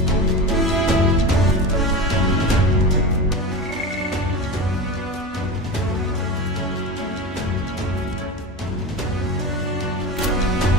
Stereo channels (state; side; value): normal; both; correlation 0.27